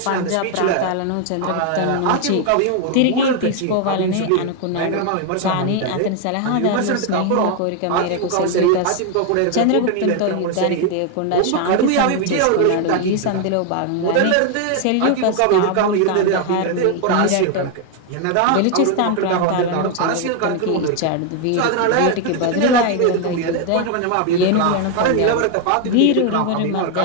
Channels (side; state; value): both; different; correlation 0.01